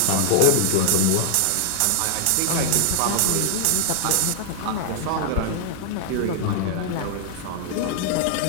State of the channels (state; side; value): different; both; correlation -0.01